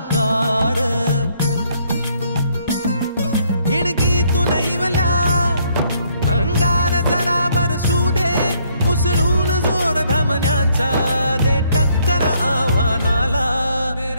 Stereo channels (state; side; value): inverted; both; correlation -0.68